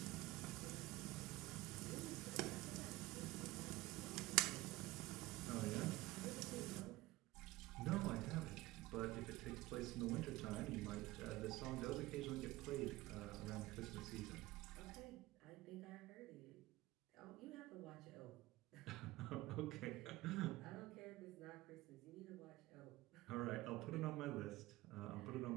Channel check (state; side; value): quieter; left; 19.0 dB